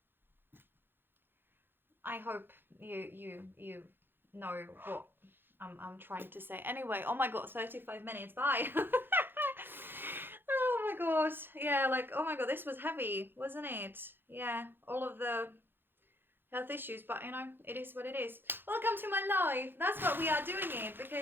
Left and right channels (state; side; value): late; left; 0.10 ms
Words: I hope you know what I'm trying to say. Anyway, oh my god, 35 minutes. Bye. Oh my god. Yeah, like, oh my god, this was heavy, wasn't it? Yeah, all of the health issues, but you know, it is what it is. Welcome to my life. That's what we are doing it,